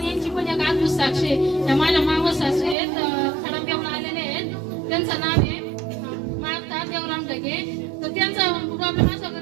यांची पण एक अद्भुत साक्ष आहे. त्या माझ्या मावस सासू आहेत, खडमदेवला आलेले आहेत. त्यांचं नाव आहे माता देवराम ढगे. तर त्यांचा प्रॉब्लेम असा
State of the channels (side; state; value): left; drops out; at 2.8 s